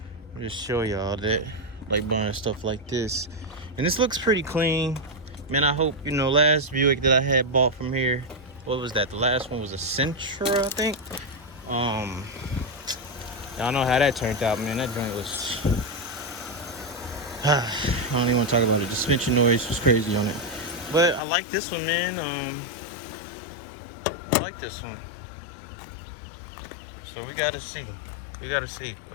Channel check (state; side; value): drops out; right; at 21.2 s